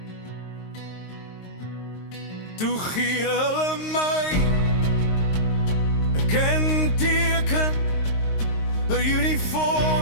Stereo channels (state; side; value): late; right; 22 ms